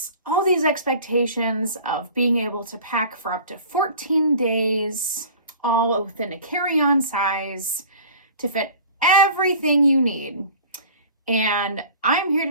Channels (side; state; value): both; inverted; correlation -0.43